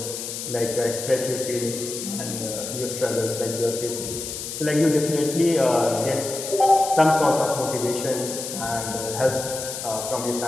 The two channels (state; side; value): noise; left; hiss, 7 dB below the sound